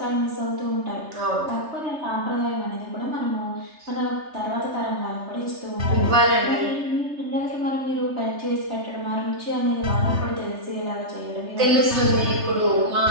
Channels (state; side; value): late; left; 3.3 ms